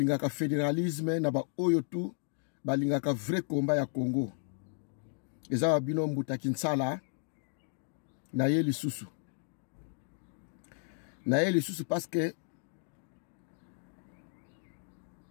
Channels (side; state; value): right; silent; 55 dB below the other